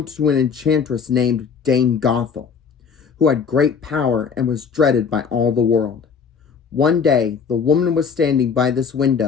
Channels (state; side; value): quieter; right; 6.1 dB